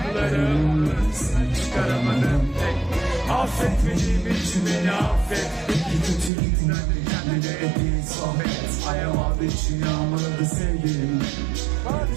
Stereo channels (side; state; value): left; drops out; at 6.3 s